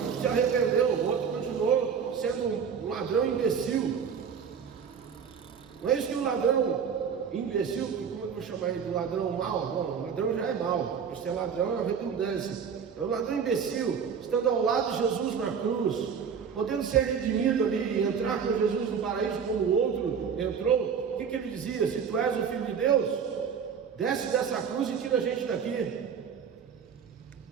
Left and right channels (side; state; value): left; quieter; 6.9 dB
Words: se arrependeu, o outro continuou sendo um ladrão imbecil. Não é isso que o ladrão imbecil, como vou chamar ele de ladrão mau, não, ladrão já é mau, ser ladrão é uma redundância, é um ladrão imbecil, estando ao lado de Jesus na cruz, podendo ser redimido ali e entrar com Jesus no paraíso como o outro entrou. O que ele dizia? Se tu és o Filho de Deus, desce dessa cruz e tira a gente daqui.